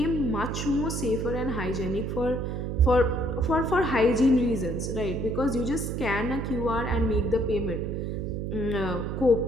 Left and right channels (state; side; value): noise; right; hum, 3 dB below the sound